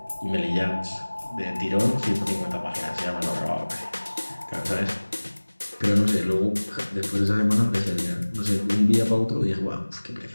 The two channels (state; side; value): inverted; both; correlation -1.00